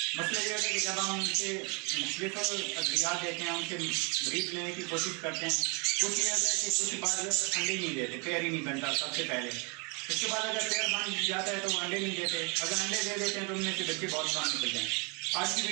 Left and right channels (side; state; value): left; quieter; 32.7 dB